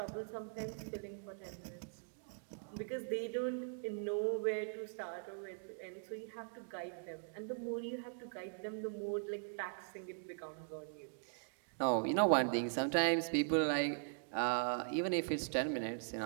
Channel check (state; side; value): silent; left; digital silence